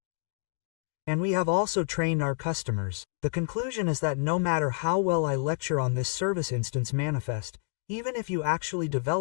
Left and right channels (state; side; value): silent; right; digital silence